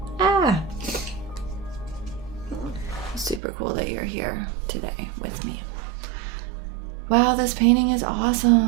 Super cool that you're here today with me. Wow, this painting is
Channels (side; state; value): left; drops out; at 3.4 s